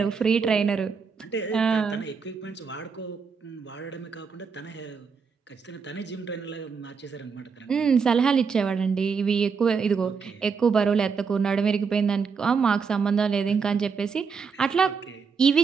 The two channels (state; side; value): quieter; left; 5.6 dB